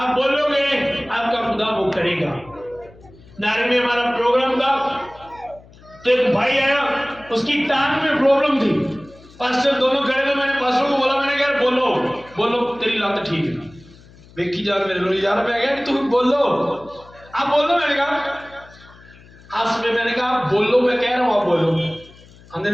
बोलोगे आपका खुदा वो करेगा। नारे में हमारा प्रोग्राम था तो एक भाई आया, उसकी टांग में प्रॉब्लम थी, पास्टर दोनों खड़े थे, मैंने पास्टर को बोला, मैंने कहा बोलो तेरी लात ठीक है। देखी जा मेरे लोग यार, मैं कहा तुम बोलो, आप बोलो। मैंने कहा हंस में, मैंने कहा आप बोलो, मैं कह रहा हूँ आप बोलो। आंधे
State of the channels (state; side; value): noise; left; hum, 24 dB below the sound